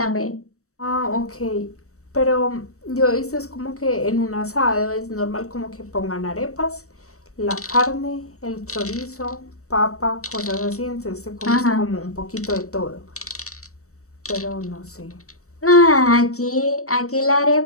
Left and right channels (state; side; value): late; right; 0.65 ms